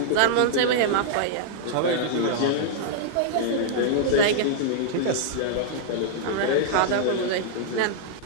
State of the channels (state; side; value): different; both; correlation -0.01